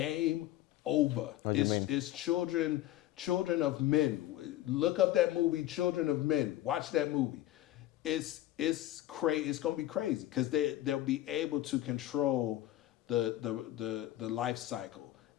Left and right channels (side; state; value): right; quieter; 14.5 dB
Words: over. What do you mean? It's children of men. Look up that movie, Children of Men. Watch that movie. It's gonna be crazy because they'll be able to control the life cycle.